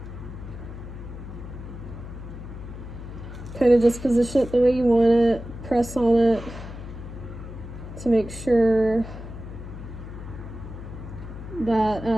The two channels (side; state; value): left; noise; hum, 11 dB below the sound